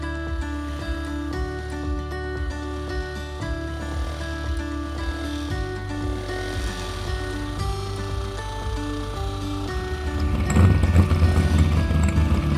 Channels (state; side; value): identical; both; correlation 1.00